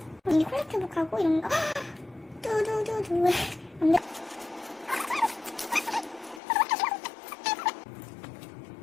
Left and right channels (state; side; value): drops out; right; at 6.4 s